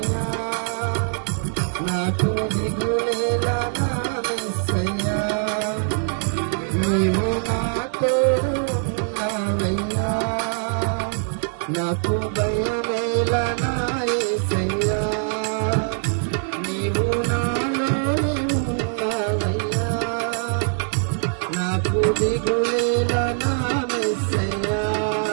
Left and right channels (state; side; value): silent; left; 64 dB below the other